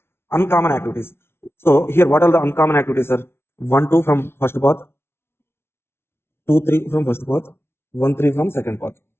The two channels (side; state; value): right; late; 0.12 ms